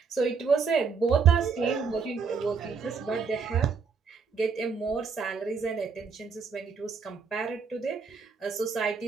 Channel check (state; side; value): quieter; left; 5.6 dB